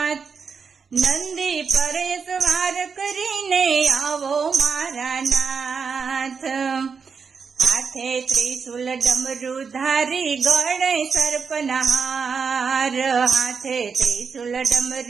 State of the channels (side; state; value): left; quieter; 5.7 dB